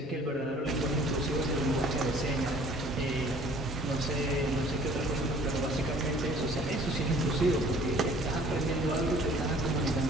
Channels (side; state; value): both; normal; correlation 0.52